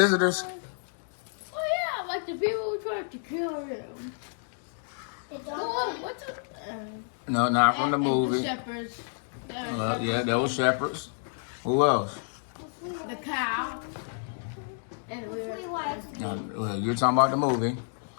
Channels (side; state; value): right; silent; digital silence